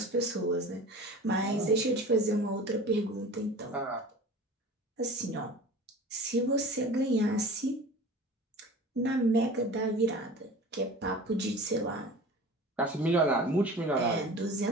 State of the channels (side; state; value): both; normal; correlation 0.38